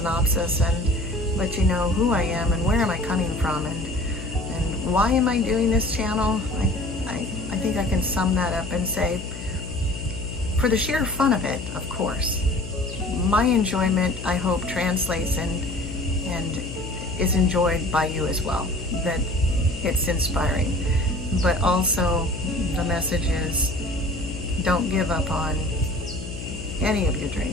and let you know who I am and where am I coming from, and why am I doing this channel. I think I can sum that up and say, for the sheer fun of it, of course. My enjoyment, I hope, translates and is enjoyed by you as well, that it's inspiring. But also the message is, don't give up on any of your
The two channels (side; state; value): left; noise; hum, 10 dB below the sound